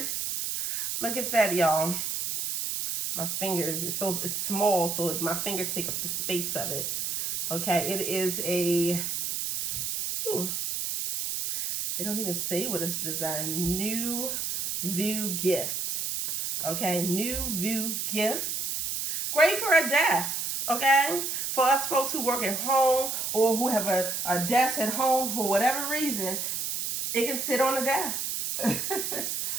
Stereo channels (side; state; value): right; noise; hiss, 2 dB below the sound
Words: Look at that, y'all. My fingers, it's small, so my fingers take up the space of it. Okay, it is a, they don't even say what it's designed. New View Gifts. Okay, New View Gifts. Great for a desk. Okay, for us folks who work at home or who have a desk at home for whatever reason, it can sit on a desk.